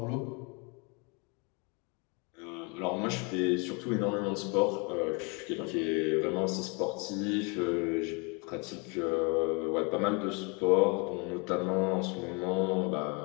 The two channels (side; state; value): right; quieter; 31.8 dB